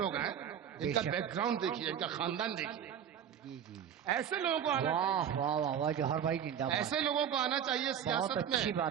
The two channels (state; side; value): quieter; left; 8.8 dB